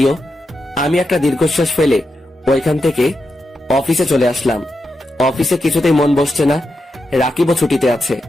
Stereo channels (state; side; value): normal; both; correlation 0.87